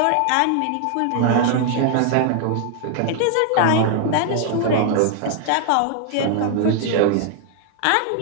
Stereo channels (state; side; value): different; both; correlation 0.00